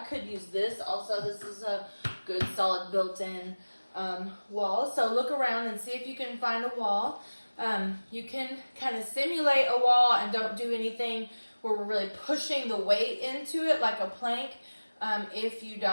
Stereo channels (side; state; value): both; inverted; correlation -1.00